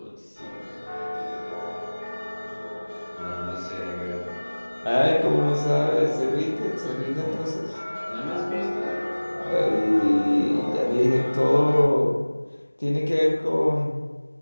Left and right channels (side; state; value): both; inverted; correlation -1.00